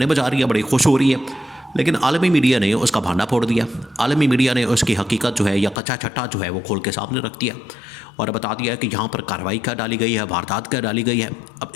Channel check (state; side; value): drops out; right; at 5.8 s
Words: بجا رہی ہے، بڑی خوش ہو رہی ہے، لیکن عالمی میڈیا نے اس کا بھانڈا پھوڑ دیا۔ عالمی میڈیا نے اس کی حقیقت جو ہے یا کچا چھٹا جو ہے وہ کھول کے سامنے رکھ دیا اور بتا دیا کہ یہاں پر کارروائی کیا ڈالی گئی ہے، واردات کیا ڈالی گئی ہے۔ اب